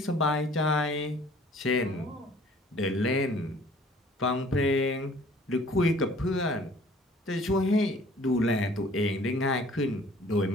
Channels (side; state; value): both; normal; correlation 0.54